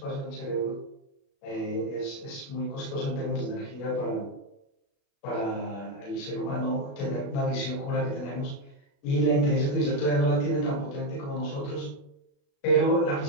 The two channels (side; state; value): right; late; 36 ms